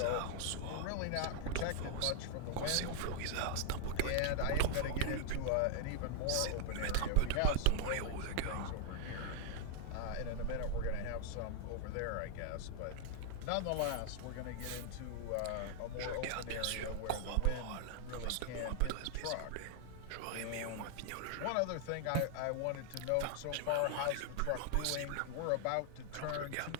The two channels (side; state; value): both; different; correlation 0.00